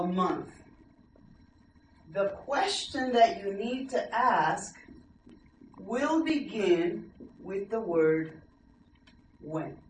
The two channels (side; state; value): both; identical; correlation 1.00